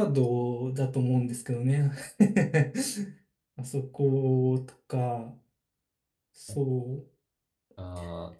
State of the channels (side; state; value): both; identical; correlation 1.00